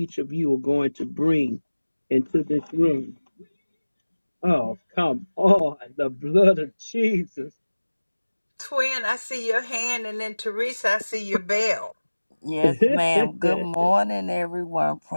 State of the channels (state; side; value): inverted; both; correlation -1.00